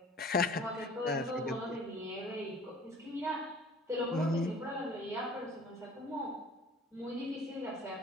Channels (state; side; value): normal; both; correlation 0.49